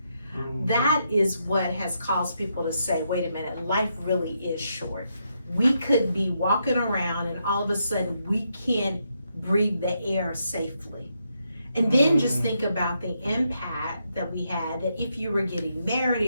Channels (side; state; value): both; inverted; correlation -0.80